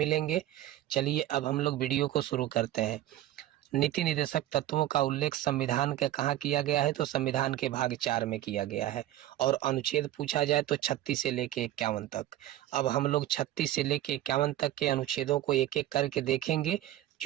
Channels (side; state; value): left; quieter; 14.0 dB